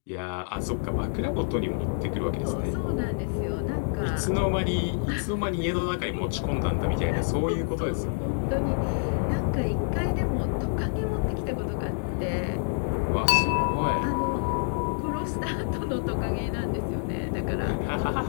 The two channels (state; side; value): silent; right; digital silence